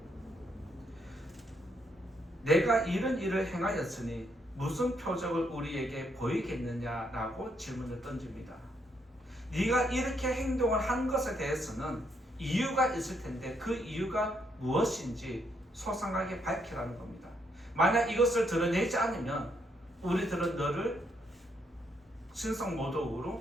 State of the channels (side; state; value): both; normal; correlation 0.75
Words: 내가 이런 일을 행하였으니 무슨 표적을 우리에게 보이겠느냐라고 질문을 던집니다. 네가 이렇게 행동을 한 것에 대해서는 이유가 있을 텐데 그 이유가 무엇인지 소상하게 밝히라는 겁니다. 만약 이것을 드러내지 않으면 우리들은 너를